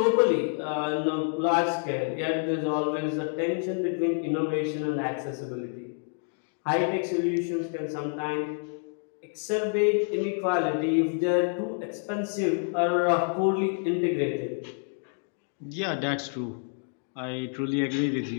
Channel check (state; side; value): silent; right; 59 dB below the other